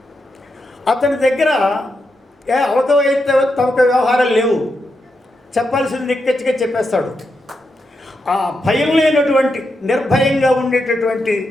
అతని దగ్గర అవకవైతే తమక వ్యవహారాలు లేవు, చెప్పాల్సింది నిక్కచ్చిగా చెప్పేస్తాడు. ఆ భయం లేనటువంటి నిర్భయంగా ఉండేటటువంటి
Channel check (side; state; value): both; normal; correlation 0.85